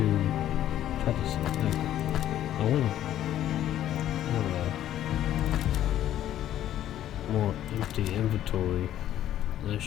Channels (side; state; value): right; quieter; 12.0 dB